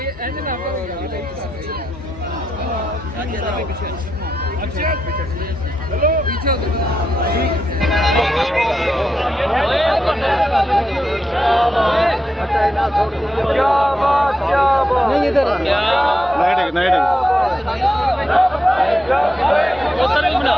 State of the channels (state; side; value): normal; both; correlation 0.85